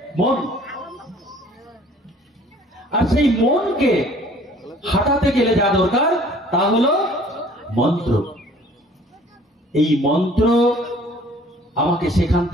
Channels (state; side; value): normal; both; correlation 0.54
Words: মন। আর সেই মনকে হাঁটাতে গেলে যা দরকার তা হলো মন্ত্র। এই মন্ত্র আমাকে সেখান